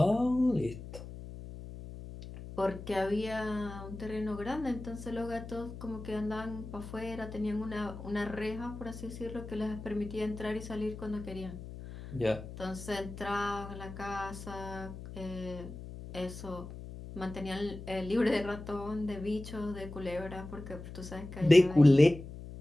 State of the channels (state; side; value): noise; left; hum, 11 dB below the sound